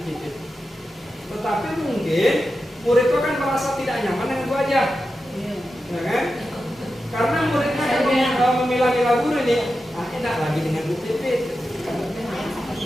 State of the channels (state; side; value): normal; both; correlation 0.90